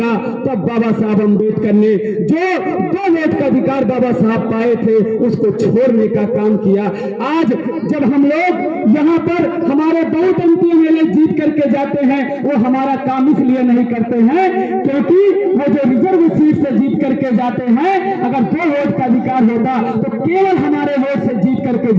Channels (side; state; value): both; identical; correlation 1.00